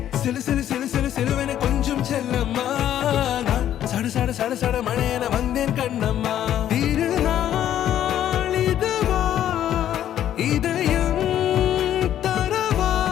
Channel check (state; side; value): quieter; right; 11.1 dB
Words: சிலு சிலு சிலு சிலு சிலுவென கொஞ்சம் செல்லம்மா நான் சட சட சட சட மழையென வந்தேன் கண்ணம்மா திருநாள் இதுவா இதயம் தரவா